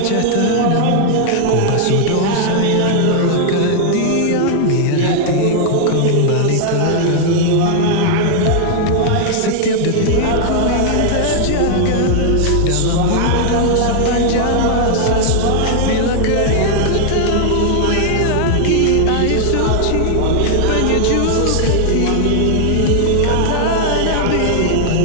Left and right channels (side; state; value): both; different; correlation 0.00